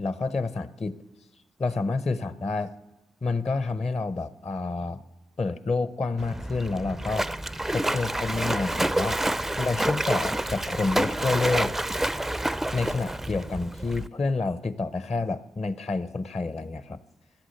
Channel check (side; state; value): both; normal; correlation 0.91